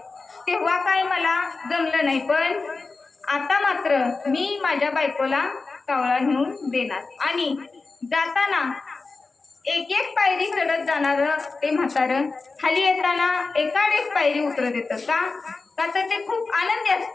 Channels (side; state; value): right; quieter; 4.0 dB